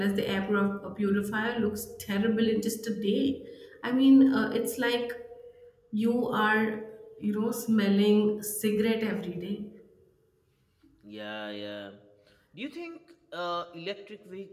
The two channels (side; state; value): both; identical; correlation 1.00